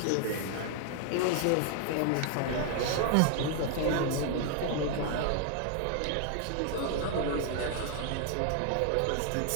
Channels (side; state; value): both; different; correlation 0.00